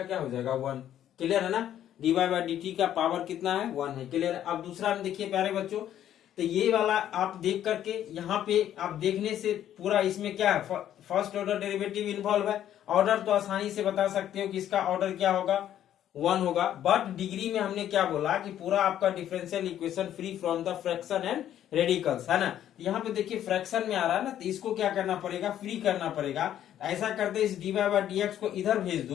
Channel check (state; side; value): quieter; right; 11.1 dB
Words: क्या हो जाएगा 1। क्लियर है ना। dy बाय dt का पावर कितना है, 1 है। क्लियर है। अब दूसरा में देखिए प्यारे बच्चों, तो ये वाला आप देख करके यहाँ पे आप देखने से पूरा इसमें क्या है, फर्स्ट ऑर्डर डेरिवेटिव इन्वॉल्व है। ऑर्डर तो आसानी से बता सकते हो कि इसका ऑर्डर क्या होगा, 1 होगा। बट डिग्री में हमने क्या बोला कि पूरा आपका differential equation free from the fraction and radicals, है ना। यहाँ पे देखिए फ्रैक्शन में आ रहा है ना, तो इसको क्या करना पड़ेगा, फ्री करना पड़ेगा। ऐसा करते इस dy बाय dx को इधर भेज